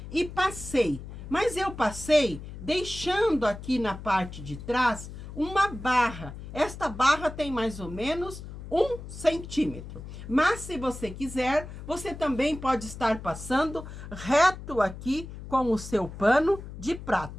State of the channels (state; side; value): noise; left; hum, 12 dB below the sound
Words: E passei, mas eu passei deixando aqui na parte de trás uma barra. Esta barra tem mais ou menos 1 centímetro. Mas se você quiser, você também pode estar passando reto aqui com o seu pano de